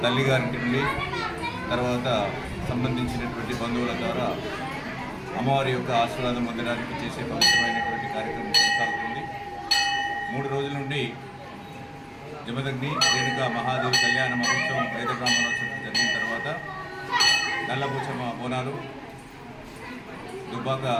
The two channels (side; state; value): both; identical; correlation 1.00